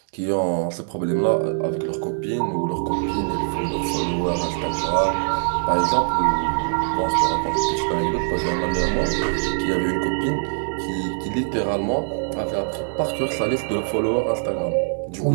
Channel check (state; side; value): silent; left; digital silence